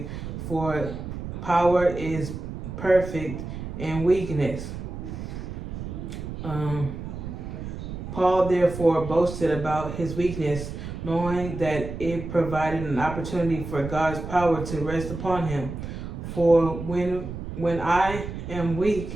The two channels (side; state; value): right; noise; rumble, 8 dB below the sound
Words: for power is perfect in weakness." Paul therefore boasted about his weakness, knowing that it provided an opportunity for God's power to rest upon him. For when I am